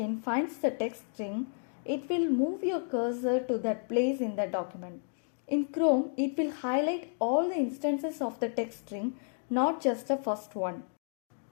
finds the text string, it will move your cursor to that place in the document. In Chrome, it will highlight all the instances of the text string, not just the first one.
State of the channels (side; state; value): right; silent; digital silence